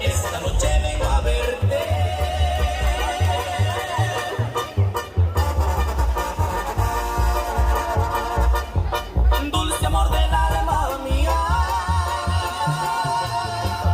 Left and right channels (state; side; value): identical; both; correlation 1.00